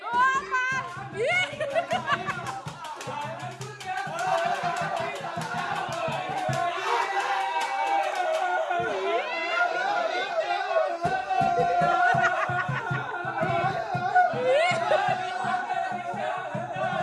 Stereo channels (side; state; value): both; identical; correlation 1.00